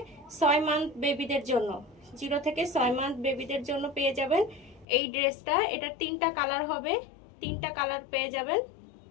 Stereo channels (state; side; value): drops out; right; at 4.9 s